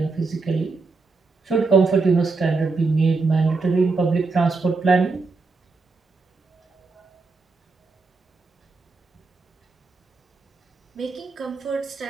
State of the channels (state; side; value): quieter; left; 4.0 dB